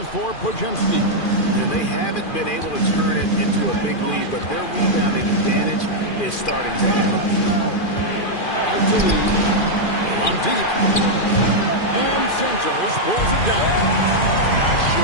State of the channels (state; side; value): late; right; 2.4 ms